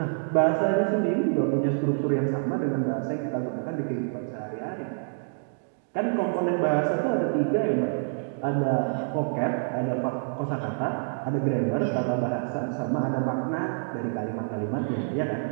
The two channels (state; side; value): silent; left; digital silence